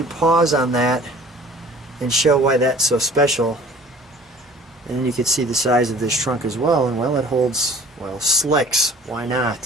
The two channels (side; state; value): both; normal; correlation 0.49